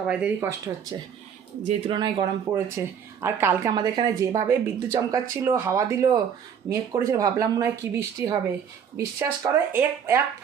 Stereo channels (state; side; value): quieter; left; 7.8 dB